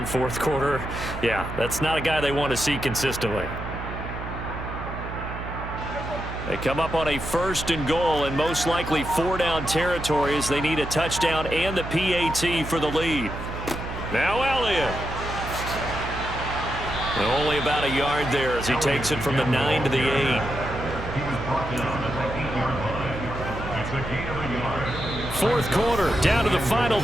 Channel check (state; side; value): noise; right; hum, 8 dB below the sound